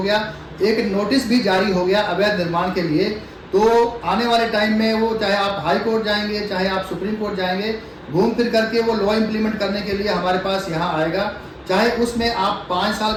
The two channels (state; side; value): identical; both; correlation 1.00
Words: गया, एक नोटिस भी जारी हो गया अवैध निर्माण के लिए, तो आने वाले टाइम में वो, चाहे आप हाई कोर्ट जाएंगे, चाहे आप सुप्रीम कोर्ट जाएंगे, घूम फिर करके वो लॉ इम्प्लीमेंट करने के लिए हमारे पास यहाँ आएगा। चाहे उसमें आप 5 साल